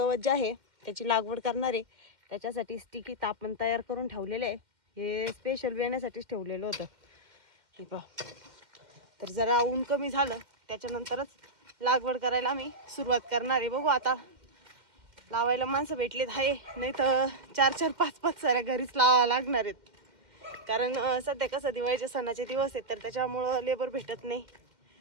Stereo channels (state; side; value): late; left; 2.1 ms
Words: जे आहे त्याची लागवड करणार आहे. त्याच्यासाठी स्टिकी आपण तयार करून ठेवलेले आहे. हे स्पेशल येण्यासाठीच ठेवलेलं होतं हे पहा. तर जरा ऊन कमी झालं त्याच्यानंतरच लागवड करायला आम्ही सुरुवात करणार आहे. बघू आता लावायला माणसं भेटलेत आहे, नाही तर 4-4, 5-5 साऱ्या घरीच लावावं लागणार आहेत. कारण सध्या कसं दिवाळीचे सणाचे दिवस आहेत तर त्याच्यामुळं लेबर भेटत नाही.